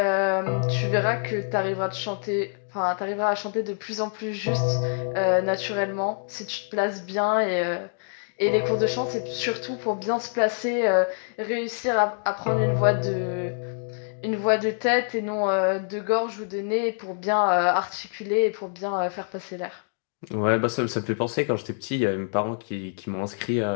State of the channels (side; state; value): right; silent; digital silence